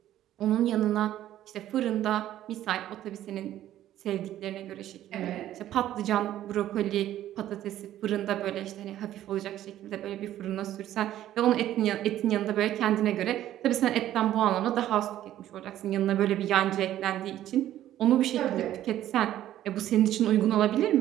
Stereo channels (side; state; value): left; quieter; 12.7 dB